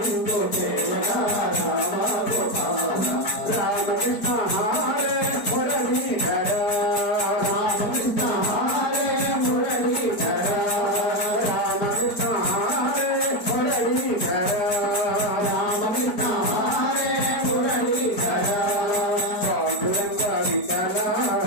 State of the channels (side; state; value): right; late; 4.5 ms